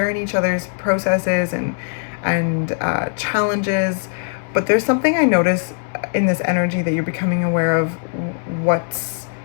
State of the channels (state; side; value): silent; right; digital silence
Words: each other's processes and challenges. But there's something I notice in this energy that you're becoming aware of, what's